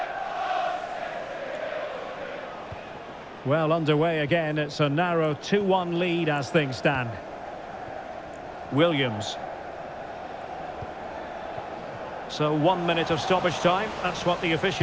Well, underway again. It's a narrow 2-1 lead as things stand. Williams. So 1 minute of stoppage time. That's what the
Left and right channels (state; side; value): identical; both; correlation 1.00